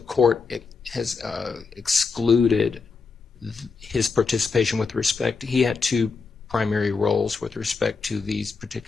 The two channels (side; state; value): right; quieter; 4.7 dB